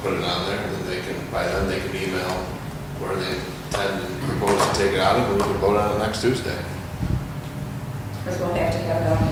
it on there, and then they can, by then they can email where they intend and propose to take it out of, and we can vote on it next Tuesday. Because we'll have to have it on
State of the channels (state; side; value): identical; both; correlation 1.00